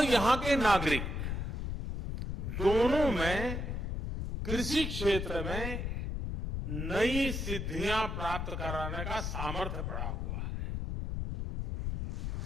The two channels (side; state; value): left; noise; rumble, 3 dB below the sound